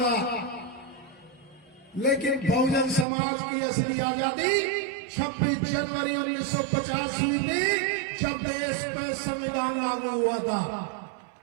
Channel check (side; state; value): left; drops out; at 3.1 s